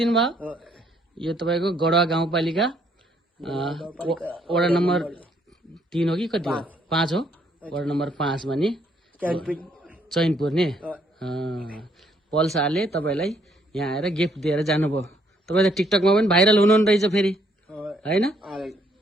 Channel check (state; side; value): normal; both; correlation 0.69